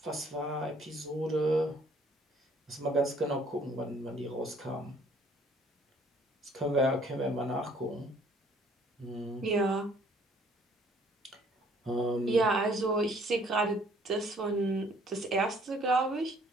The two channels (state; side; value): normal; both; correlation 0.60